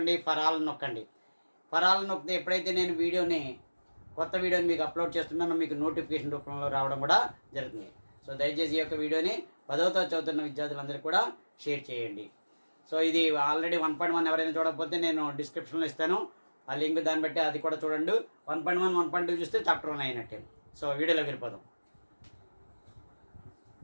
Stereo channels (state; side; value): inverted; both; correlation -1.00